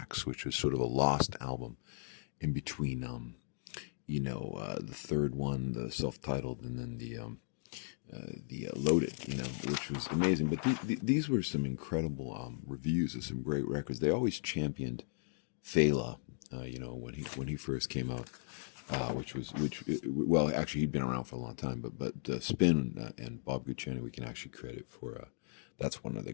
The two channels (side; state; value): right; silent; digital silence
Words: which was sort of a lost album in between. The third one, the self-titled, and then the Loaded, which was amazing. But these were some incredible reviews of some great records. They always championed Fela, when he first came out, actually he'd been around for a long time, but Spin and Bob Guccione we can actually credit for. That's one of the